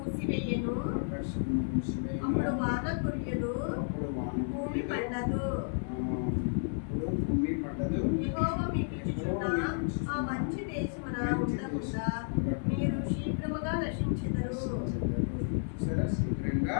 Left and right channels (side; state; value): right; silent; 56 dB below the other